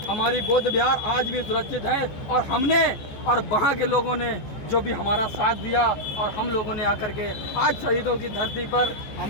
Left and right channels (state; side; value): late; right; 14 ms